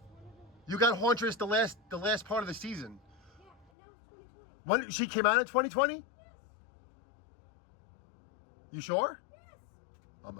You got Hauntress the last part of the season. Yeah, and that was 2020. When she came out in 2020? Yes. You sure? Yes. I'm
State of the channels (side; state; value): right; drops out; at 3.7 s